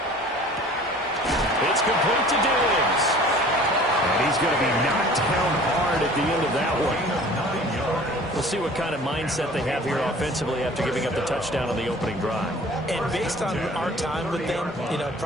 It's complete to Diggs. And he's going to be knocked down hard at the end of that one. We'll see what kind of mindset they have here offensively after giving up the touchdown on the opening drive. And based on our time with them,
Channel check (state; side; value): normal; both; correlation 0.47